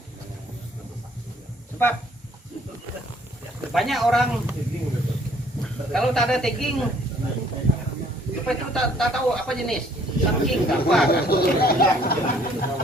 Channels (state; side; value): normal; both; correlation 0.60